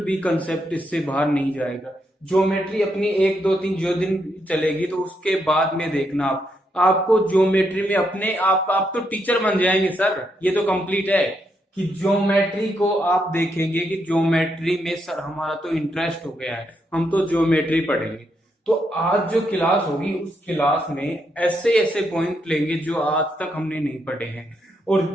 भी कंसेप्ट इससे बाहर नहीं जाएगा। ज्योमेट्री अपनी 1 2 3 जो दिन चलेगी, तो उसके बाद में देखना आपको ज्योमेट्री में अपने आप तो टीचर बन जाएंगे सर। ये तो कंप्लीट है कि ज्योमेट्री को आप देखेंगे कि ज्योमेट्री में सर हमारा तो इंटरेस्ट हो गया है, हम तो ज्योमेट्री पढ़ेंगे। तो आज जो क्लास होगी उस क्लास में ऐसे ऐसे पॉइंट लेंगे जो आज तक हमने नहीं पढ़े हैं, और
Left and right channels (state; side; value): normal; both; correlation 0.79